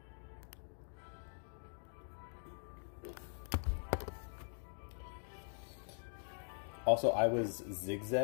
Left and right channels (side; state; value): right; silent; digital silence